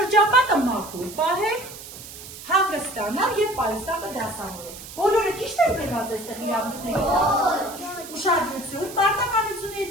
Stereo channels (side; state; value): right; noise; hiss, 14 dB below the sound